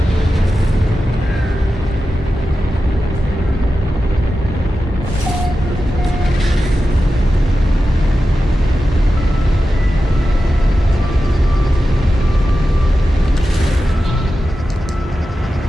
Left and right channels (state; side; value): normal; both; correlation 0.92